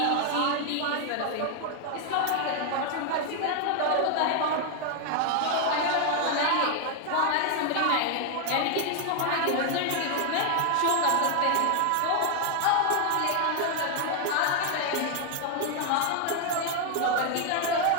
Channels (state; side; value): different; both; correlation 0.00